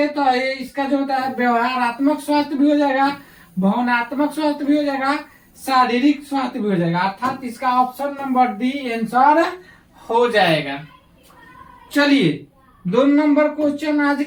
तो ये इसका जो होता है व्यवहारात्मक स्वास्थ्य भी हो जाएगा, भावनात्मक स्वास्थ्य भी हो जाएगा, शारीरिक स्वास्थ्य भी हो जाएगा। अर्थात इसका ऑप्शन नंबर डी आंसर हो जाएगा। चलिए 2 नंबर क्वेश्चन आज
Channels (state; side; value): identical; both; correlation 1.00